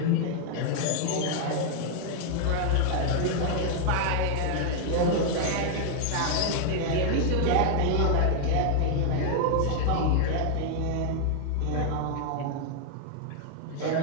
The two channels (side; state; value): both; different; correlation 0.00